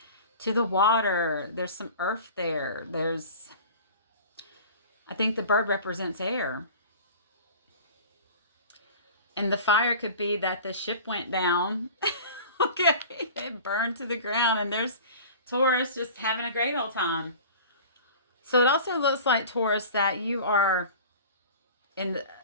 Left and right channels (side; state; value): both; inverted; correlation -0.40